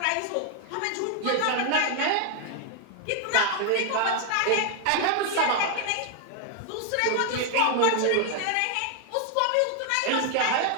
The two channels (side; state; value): both; different; correlation 0.00